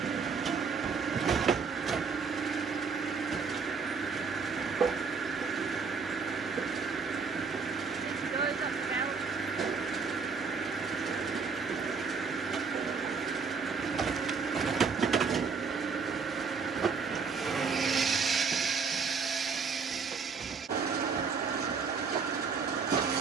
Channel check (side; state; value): left; quieter; 5.3 dB